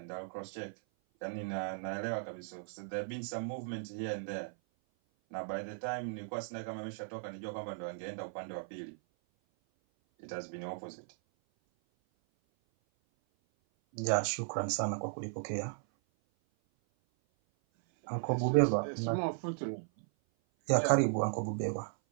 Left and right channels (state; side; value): silent; left; 54 dB below the other